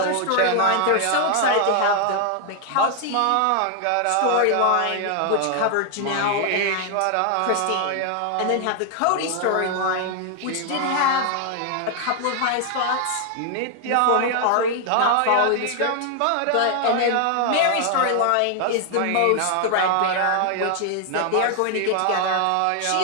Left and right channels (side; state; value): both; different; correlation 0.00